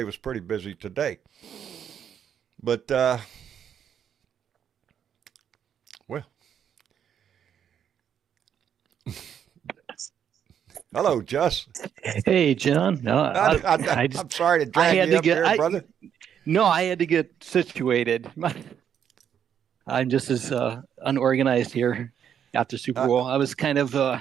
was pretty busy today. But, well. Hello, Jess. Hey, John. No, I'm sorry to drag you up here, brother. No, I had to get situated. I'm just as unorganized here after Super Bowl. I was kind of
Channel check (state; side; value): quieter; left; 8.7 dB